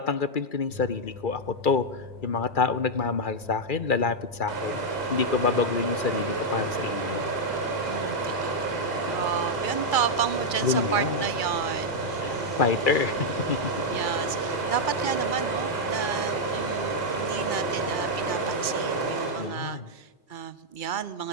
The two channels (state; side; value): late; right; 2.3 ms